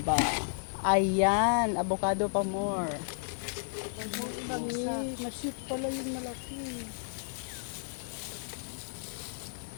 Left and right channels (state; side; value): silent; right; 56 dB below the other